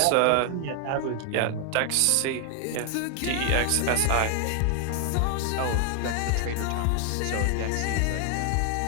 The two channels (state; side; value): different; both; correlation 0.00